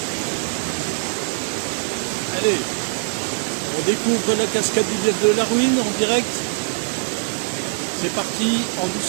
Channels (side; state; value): left; silent; digital silence